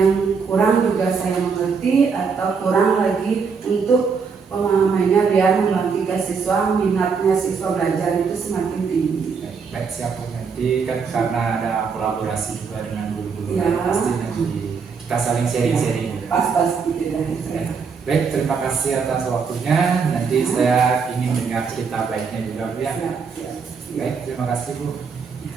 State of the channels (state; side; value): quieter; left; 5.6 dB